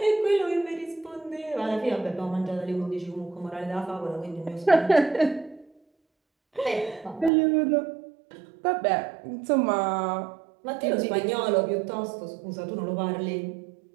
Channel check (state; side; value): drops out; left; at 7.3 s